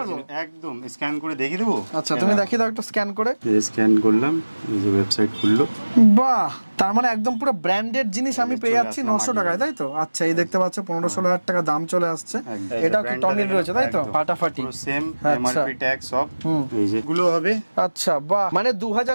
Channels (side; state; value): both; inverted; correlation -1.00